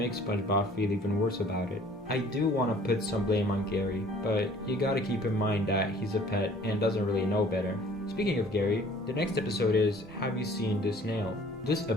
SpongeBob feel even worse about it. I do want to put some blame on Gary, but you gotta keep in mind that he's a pet and doesn't really know better. Speaking of Gary, the next episode is Have You Seen This Nail? This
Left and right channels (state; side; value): normal; both; correlation 0.53